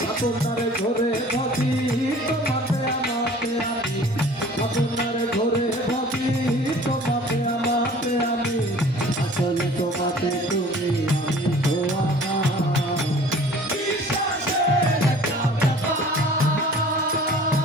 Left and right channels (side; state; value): both; normal; correlation 0.48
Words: আপনার ঘরে ভাবি তোমাতে আমাতে আমি, আপনার ঘরে ভাবি তোমাতে আমাতে আমি, আসলে তোমাতে তুমি আমি তো আমার, বিশ্বাসের একটা ব্যাপার।